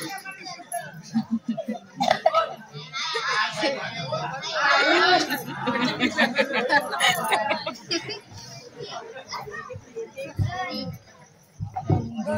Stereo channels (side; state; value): both; identical; correlation 1.00